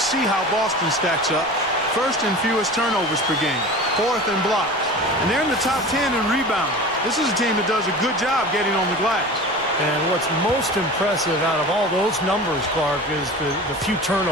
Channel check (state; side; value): noise; left; rumble, 26 dB below the sound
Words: how Boston stacks up. First in fewest turnovers per game, fourth in blocks. And they're in the top 10 in rebounding. This is a team that does a good job getting on the glass. And what's most impressive out of all those numbers, Clark, is the few